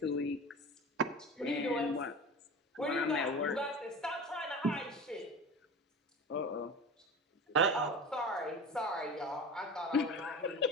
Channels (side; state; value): both; normal; correlation 0.33